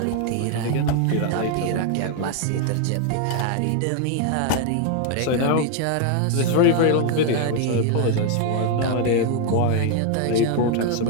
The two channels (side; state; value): both; different; correlation 0.00